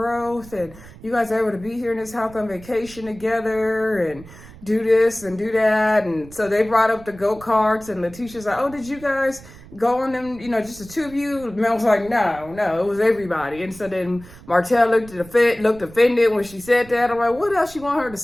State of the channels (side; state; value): right; noise; rumble, 19 dB below the sound